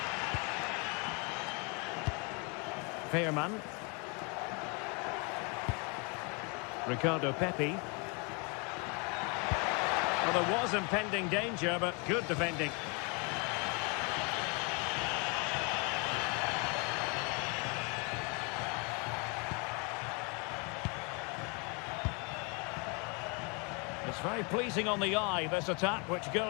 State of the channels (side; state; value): right; quieter; 32.5 dB